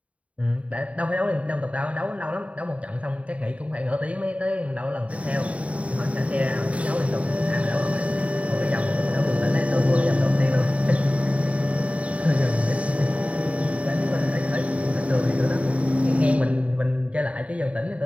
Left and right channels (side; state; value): left; late; 0.065 ms